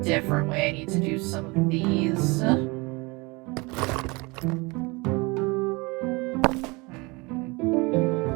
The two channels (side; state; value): left; quieter; 26.1 dB